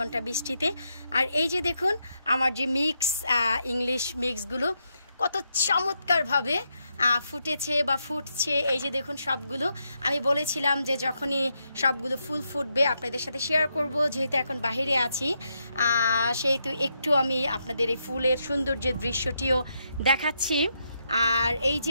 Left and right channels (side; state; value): both; inverted; correlation -0.81